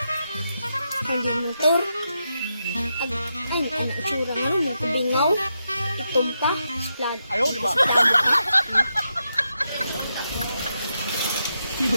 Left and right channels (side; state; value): both; inverted; correlation -0.85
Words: Nandiyan motor. Ay, anak tsura nga. Nagkabingaw. Itom pa. Splad. Ayaw, di ba?